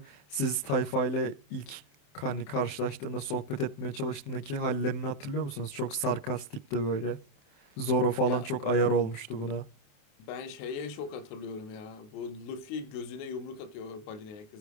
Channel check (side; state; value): right; late; 27 ms